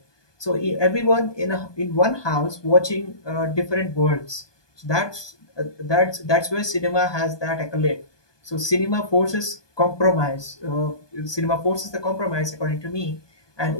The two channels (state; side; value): late; right; 1.2 ms